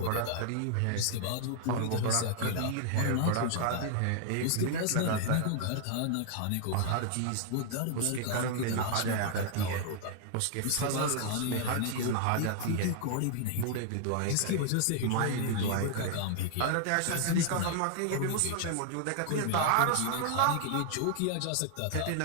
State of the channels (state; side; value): different; both; correlation -0.01